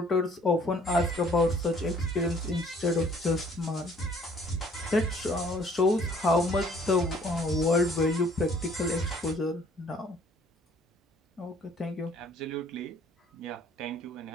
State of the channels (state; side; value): normal; both; correlation 0.58